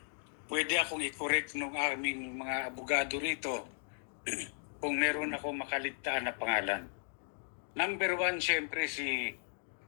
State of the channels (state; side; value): silent; right; digital silence